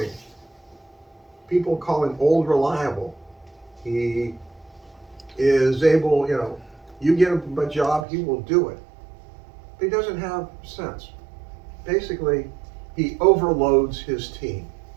People call him old reliable. He is able, you get him a job, he will do it. But he doesn't have sense. Basically, he overloads his team.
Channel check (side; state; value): left; drops out; at 8.1 s